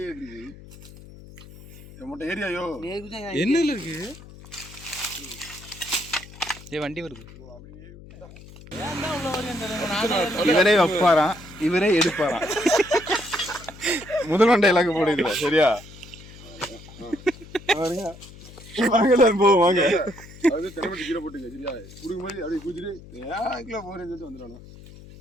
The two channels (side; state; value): left; noise; hum, 18 dB below the sound